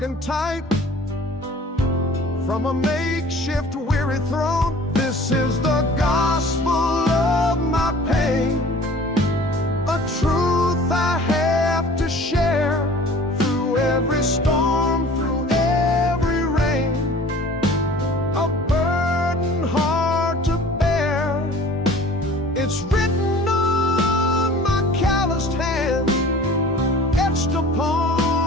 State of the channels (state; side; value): normal; both; correlation 0.46